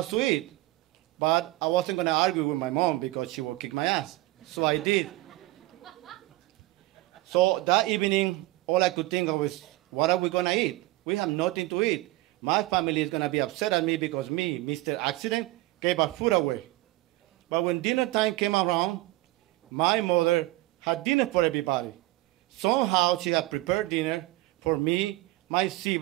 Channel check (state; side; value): quieter; left; 18.9 dB